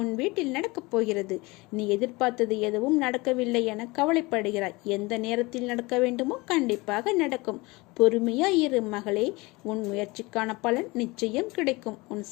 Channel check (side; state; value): right; quieter; 23.7 dB